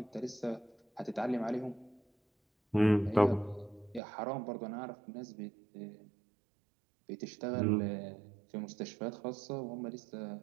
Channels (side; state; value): left; drops out; at 4.0 s